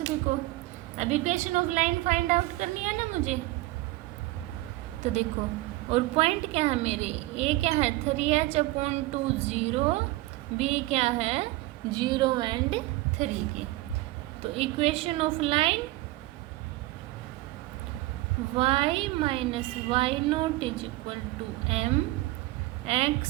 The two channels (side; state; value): left; quieter; 18.8 dB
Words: को। अब equation of line find out करनी है ना मुझे, तो देखो, और पॉइंट क्या है मेरे, ए क्या है 3h अपॉन 2 0, बी क्या है 0 एंड 3 के। तो equation of line y minus y not is equal to m